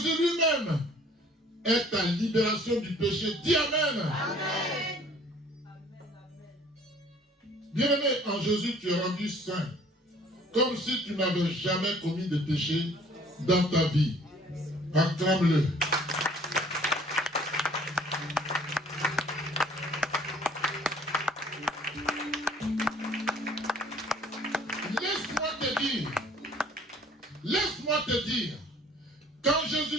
lui-même est ta libération du péché. Dis Amen. Bien-aimé, en Jésus, tu es rendu saint, comme si tu n'avais jamais commis de péché dans ta vie. Acclame-le. Laisse-moi te dire, quand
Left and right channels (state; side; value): normal; both; correlation 0.55